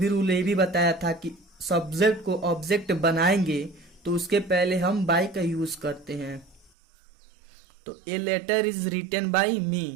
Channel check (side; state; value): left; drops out; at 6.7 s